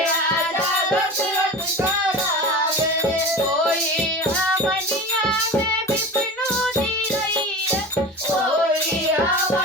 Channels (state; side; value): normal; both; correlation 0.31